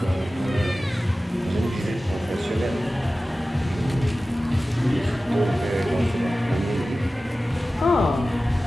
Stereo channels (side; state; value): both; normal; correlation 0.96